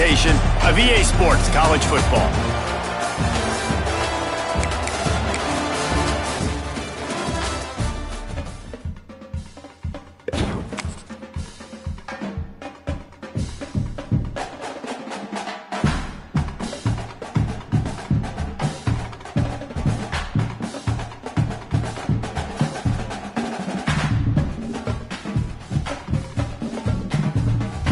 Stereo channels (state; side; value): identical; both; correlation 1.00